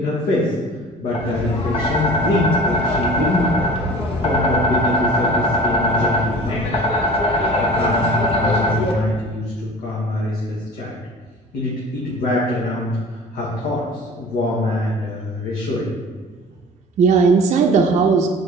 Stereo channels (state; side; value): normal; both; correlation 0.42